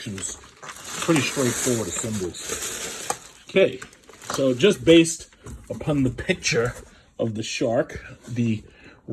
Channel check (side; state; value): both; identical; correlation 1.00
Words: Pretty straightforward assemblies. Okay, so just based upon the picture of the Shark, the